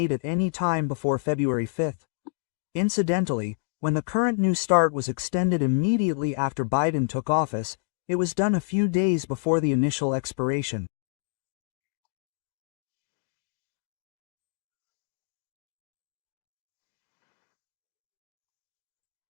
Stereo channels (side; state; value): right; silent; digital silence